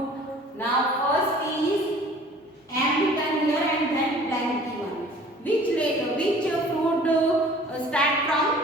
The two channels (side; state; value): both; normal; correlation 0.49